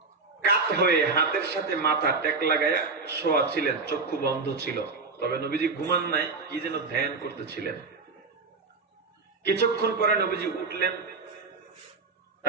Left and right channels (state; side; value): quieter; left; 4.2 dB